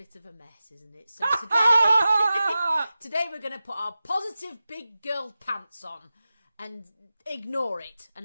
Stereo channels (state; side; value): inverted; both; correlation -0.94